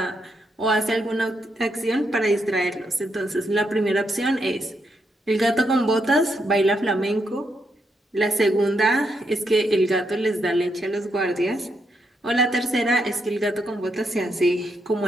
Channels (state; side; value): normal; both; correlation 0.79